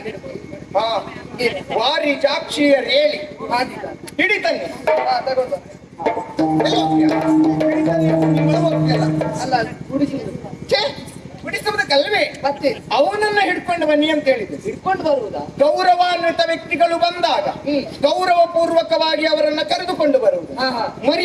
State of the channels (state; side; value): identical; both; correlation 1.00